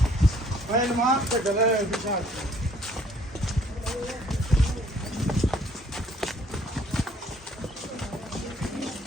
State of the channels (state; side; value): normal; both; correlation 0.61